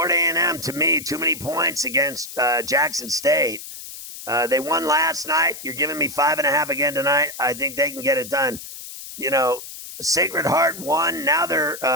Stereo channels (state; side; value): noise; left; hiss, 12 dB below the sound